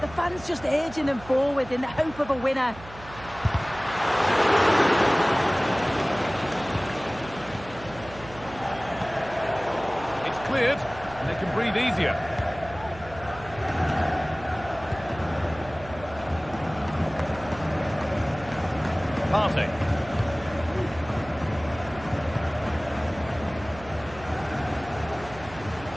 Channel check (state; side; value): noise; right; hum, 17 dB below the sound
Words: fans just urging them forward in the hope of a winner. It's cleared and they can breathe easier. Partey.